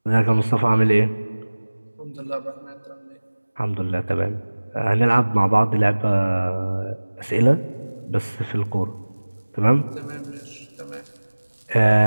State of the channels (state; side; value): inverted; both; correlation -1.00